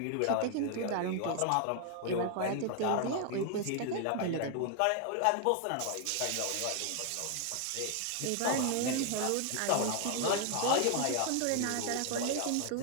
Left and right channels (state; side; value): different; both; correlation 0.00